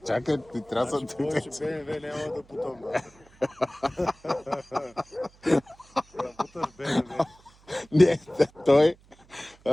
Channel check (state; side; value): noise; right; hum, 28 dB below the sound